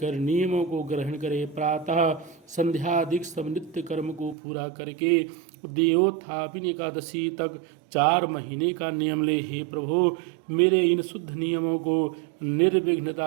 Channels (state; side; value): drops out; left; at 4.4 s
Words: नियमों को ग्रहण करे। प्रातः संध्यादिक सब नित्य कर्म को पूरा करके देवोत्थापिनी एकादशी तक 4 महीने का नियम ले। हे प्रभु, मेरे इन शुद्ध नियमों को